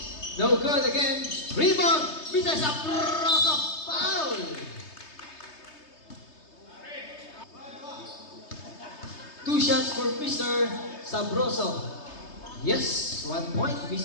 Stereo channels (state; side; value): late; right; 3.3 ms